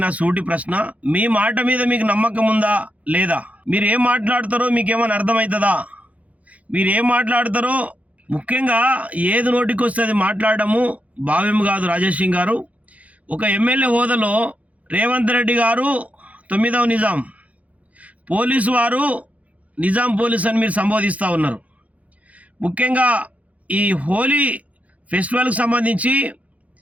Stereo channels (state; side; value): late; left; 0.068 ms